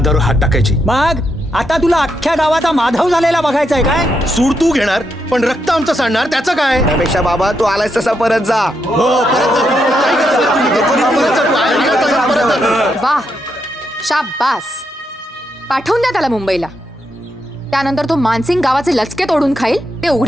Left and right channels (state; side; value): normal; both; correlation 0.81